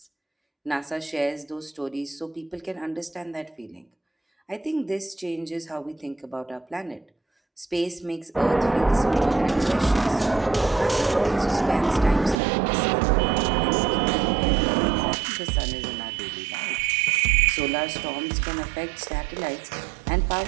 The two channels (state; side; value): drops out; left; at 12.4 s